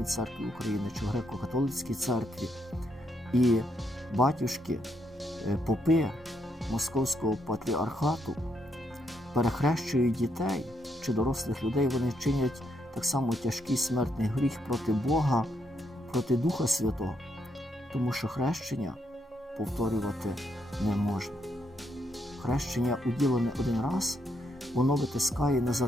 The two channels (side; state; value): both; normal; correlation 0.76